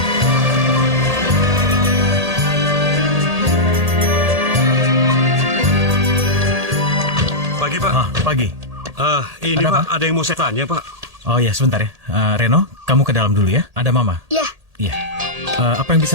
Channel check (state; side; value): late; left; 1.8 ms